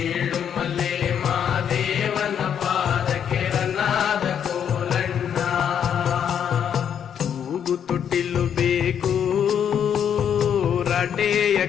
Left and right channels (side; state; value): right; quieter; 8.5 dB